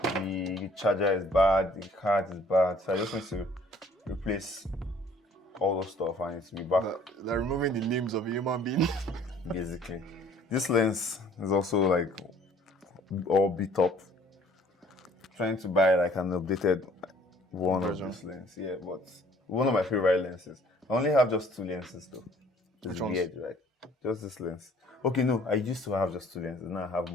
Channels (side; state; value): both; normal; correlation 0.57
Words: the charger is bad, the card is bad. So I just need to replace all those stuff and it's be back. They're removing the limbs of a human being. Basically. This lens is also like all beat up. Trying to buy like an updated one version of this lens. Yeah, but one of my favorite lenses. I only have just 2 lenses though. It's weird, right? Just this lens. Okay, no, I used to have just 2 lenses. Now I have